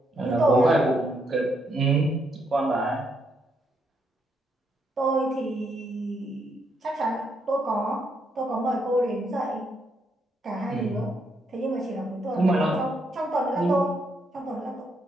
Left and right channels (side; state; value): both; normal; correlation 0.76